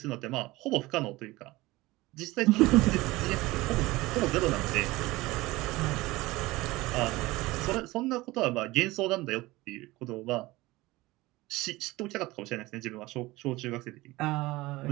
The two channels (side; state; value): left; quieter; 19.9 dB